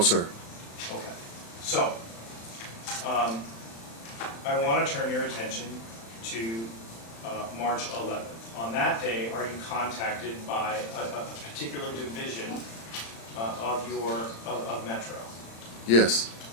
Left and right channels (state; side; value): late; right; 35 ms